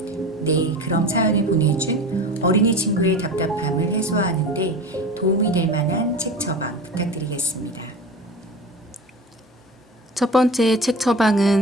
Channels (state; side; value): normal; both; correlation 0.32